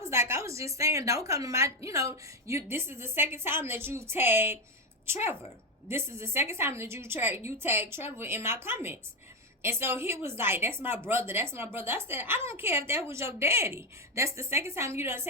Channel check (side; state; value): both; normal; correlation 0.10